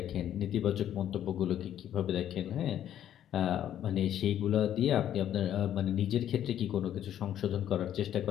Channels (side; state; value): right; quieter; 10.8 dB